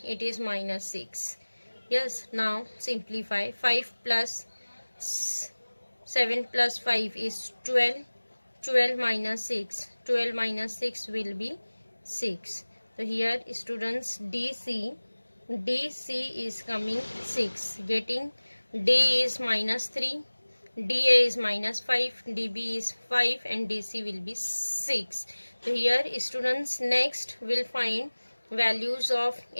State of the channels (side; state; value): both; inverted; correlation -1.00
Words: It is minus 6. Yes, now simplify. 5 plus 7 plus 5 is 12. 12 minus 6. 12 minus 6 will be 6. So here students DC is coming 6. Getting D is minus 3. DA is minus 5. DB is 5 and DC will be 6. So here students next will find values of